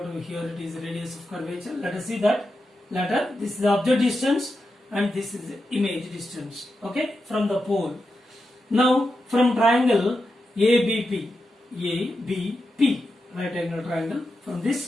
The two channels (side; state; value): both; normal; correlation 0.88